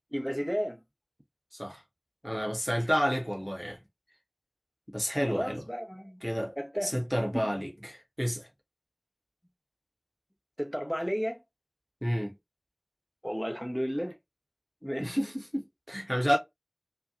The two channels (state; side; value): identical; both; correlation 1.00